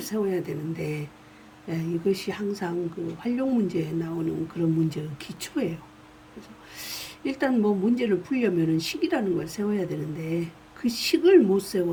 세워야 되는데, 이것이 항상 그 활용 문제에 나오는 그런 문제의 기초예요. 그래서 일단 뭐 문제를 풀려면은 식이라는 걸 세워야 되는데, 그 식을 못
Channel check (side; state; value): both; identical; correlation 1.00